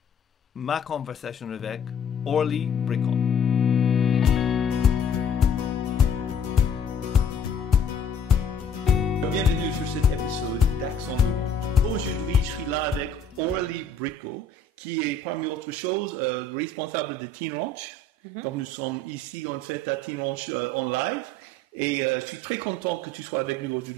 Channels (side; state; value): right; quieter; 3.3 dB